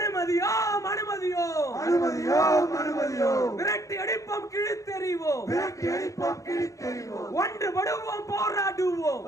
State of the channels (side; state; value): right; late; 0.16 ms